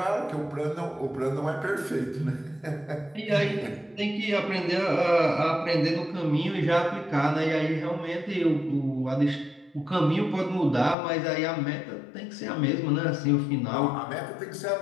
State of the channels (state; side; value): drops out; right; at 11.0 s